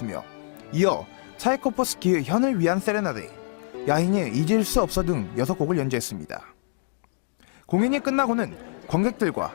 이어 차이코프스키의 현을 위한 세레나데, 야인의 잊을 수 없어 등 6곡을 연주했습니다. 공연이 끝나고는 관객들과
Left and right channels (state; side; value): silent; right; digital silence